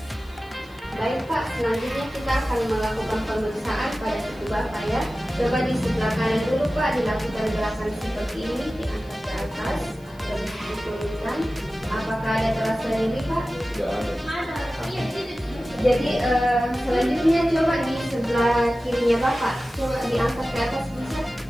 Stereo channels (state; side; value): noise; left; hiss, 29 dB below the sound